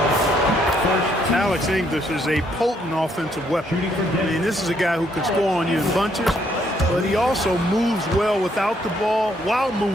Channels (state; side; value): normal; both; correlation 0.71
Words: Alex English is a potent offensive weapon. I mean, this is a guy who can score on you in bunches, but he also moves well without the ball while